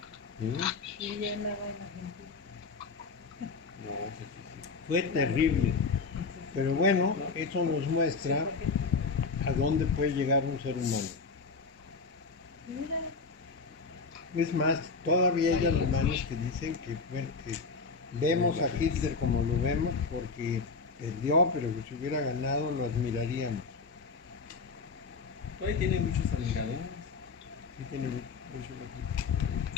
¿Sí? Y ya nada en Argentina. No, Fue terrible. Pero bueno, eso nos muestra a dónde puede llegar un ser humano. Mira, Es más, todavía hay alemanes que dicen que, bueno, que vemos a Hitler como lo vemos porque perdió, pero que si hubiera ganado lo admiraríamos. Hoy tiene muchos admiradores. Sí, tiene mucho.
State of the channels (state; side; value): quieter; right; 4.4 dB